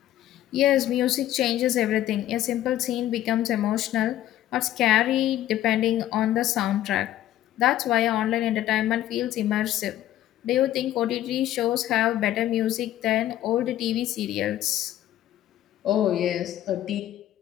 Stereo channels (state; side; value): quieter; right; 13.1 dB